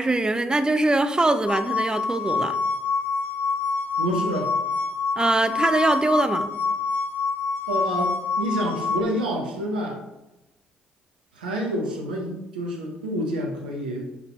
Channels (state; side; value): normal; both; correlation 0.72